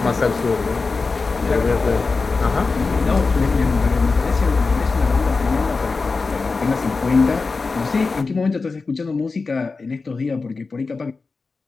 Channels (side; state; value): right; quieter; 4.2 dB